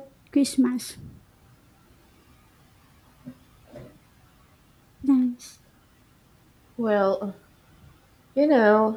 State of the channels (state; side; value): identical; both; correlation 1.00